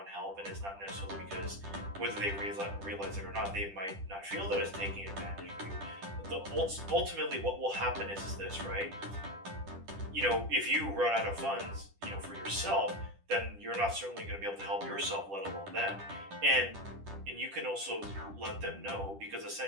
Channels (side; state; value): left; late; 10 ms